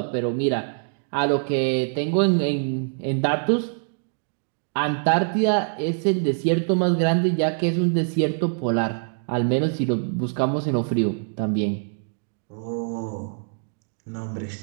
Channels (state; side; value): silent; left; 62 dB below the other